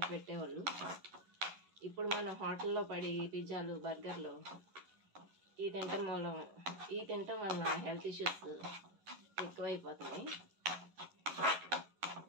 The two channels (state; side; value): late; left; 11 ms